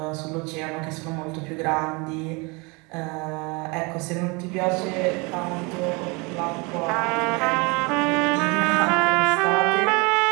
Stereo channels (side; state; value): left; quieter; 28.4 dB